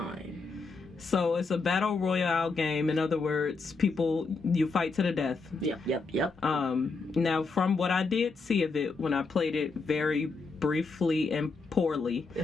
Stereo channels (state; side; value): quieter; right; 4.2 dB